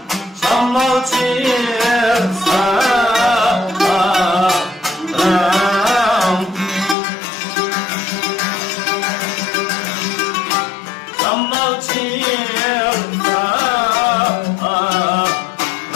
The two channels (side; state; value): right; drops out; at 7.0 s